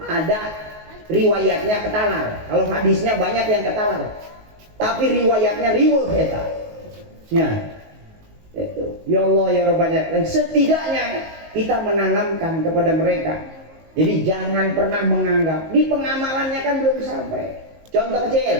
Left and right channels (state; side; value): late; left; 19 ms